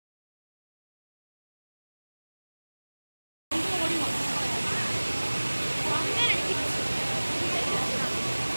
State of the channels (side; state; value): both; inverted; correlation -1.00